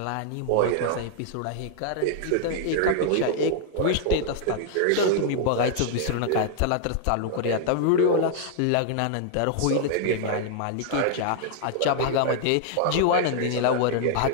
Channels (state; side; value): different; both; correlation -0.01